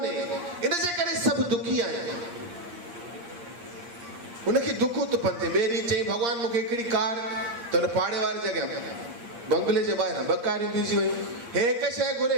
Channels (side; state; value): left; late; 8.6 ms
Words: इन जे करे सभु दुखी आहिनि। हुनखे दुख थो पते। ॿिए ॾींहुं चई भॻवानु मूंखे हिकिड़ी कार, त हुन पाड़े वारे जॻह बंगले जे ॿाहिरां 2 कारियूं बीठी वयूं। हे हिकु शइ घुरे,